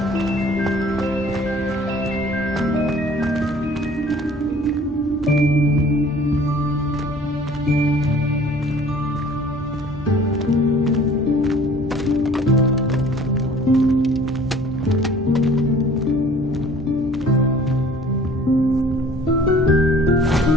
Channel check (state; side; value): normal; both; correlation 0.50